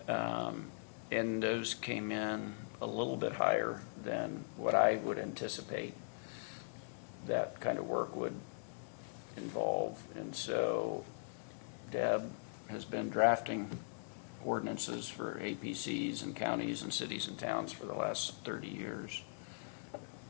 And those came in a little bit higher than what I would anticipate that kind of work would involve. And so Deb has been drafting ordinances for APCs and counties and cities and towns for the last 30 years.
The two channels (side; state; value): right; silent; digital silence